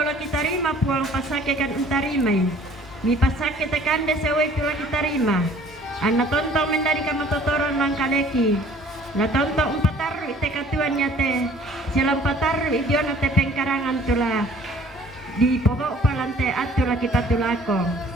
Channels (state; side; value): normal; both; correlation 0.54